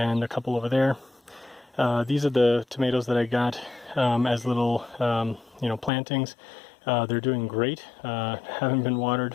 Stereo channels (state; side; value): drops out; right; at 5.9 s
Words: a couple over there. These are the tomatoes that I got as little plantings. They're doing great, haven't been